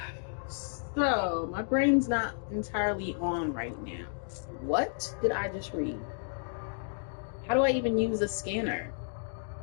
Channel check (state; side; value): silent; right; digital silence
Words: So, my brain's not entirely on right now. What did I just read? How do I even use a scanner?